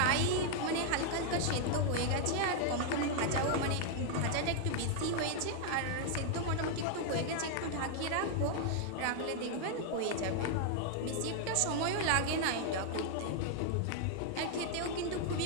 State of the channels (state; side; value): different; both; correlation 0.00